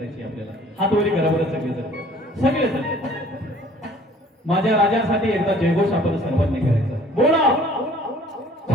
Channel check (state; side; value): normal; both; correlation 0.54